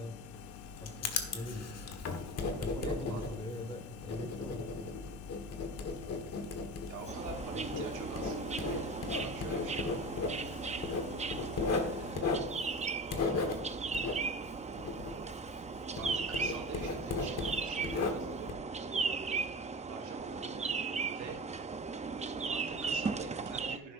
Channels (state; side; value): normal; both; correlation 0.31